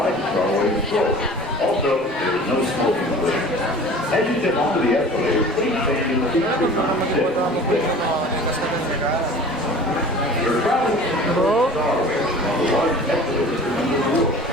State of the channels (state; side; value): normal; both; correlation 0.42